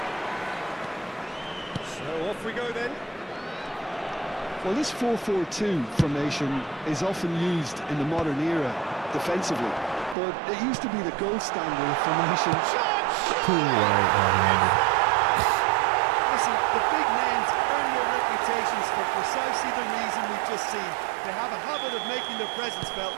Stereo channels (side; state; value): left; drops out; at 10.2 s